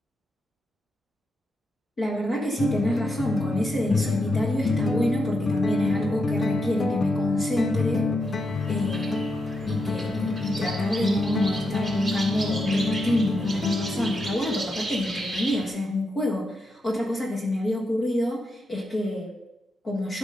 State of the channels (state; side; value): normal; both; correlation 0.84